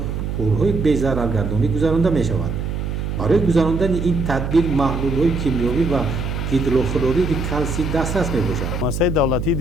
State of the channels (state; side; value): noise; right; hum, 3 dB below the sound